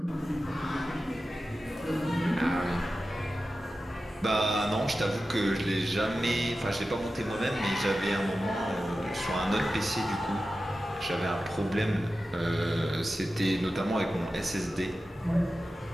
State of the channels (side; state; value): both; normal; correlation 0.93